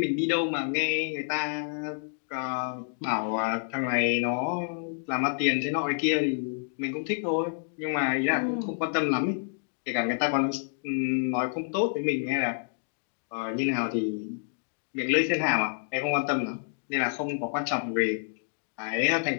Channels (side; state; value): right; silent; digital silence